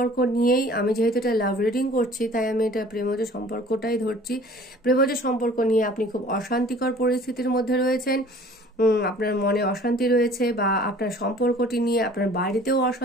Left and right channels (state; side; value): normal; both; correlation 0.50